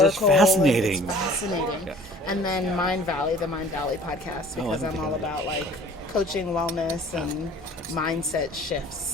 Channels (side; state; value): both; normal; correlation 0.49